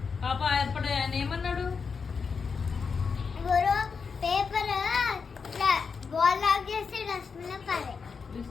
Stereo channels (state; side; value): quieter; right; 5.5 dB